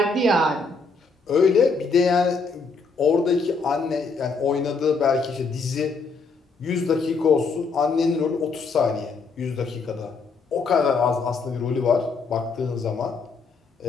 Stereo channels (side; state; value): right; quieter; 4.3 dB